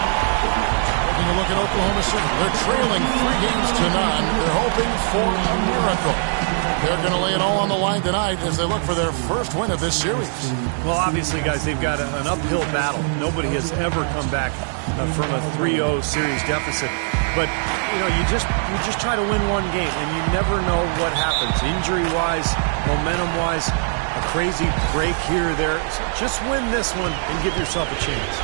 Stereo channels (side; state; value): left; silent; 65 dB below the other